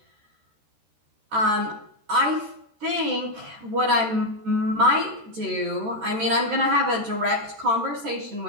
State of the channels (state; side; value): late; left; 13 ms